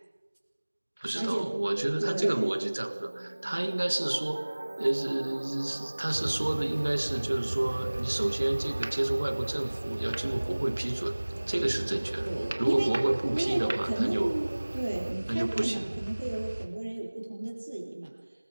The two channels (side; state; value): both; inverted; correlation -1.00